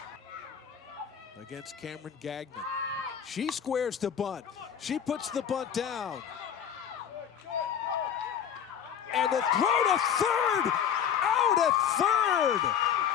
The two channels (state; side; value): quieter; right; 8.4 dB